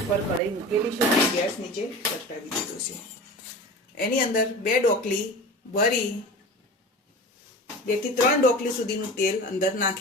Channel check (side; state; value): both; normal; correlation 0.35